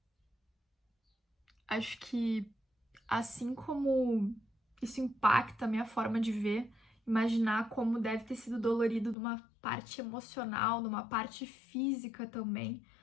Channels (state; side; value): drops out; right; at 9.2 s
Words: acho que assim como isso impacta a minha forma de ver, imaginar como deve ter sido dolorido numa parte emocional, numa parte física também,